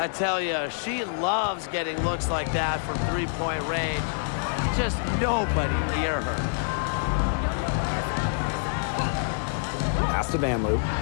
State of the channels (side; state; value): right; silent; 61 dB below the other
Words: tell you, she loves getting looks like that from three-point range. Just nobody near her. Pass to Van Loo.